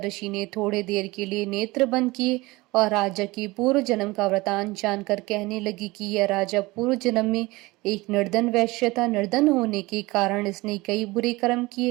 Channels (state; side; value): quieter; left; 21.7 dB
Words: ऋषि ने थोड़े देर के लिए नेत्र बंद किए और राजा की पूर्व जन्म का वृतांत जानकर कहने लगी कि यह राजा पूर्व जन्म में एक निर्धन वैश्य था। निर्धन होने के कारण इसने कई बुरे कर्म